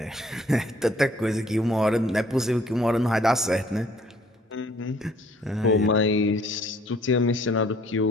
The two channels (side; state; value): both; normal; correlation 0.60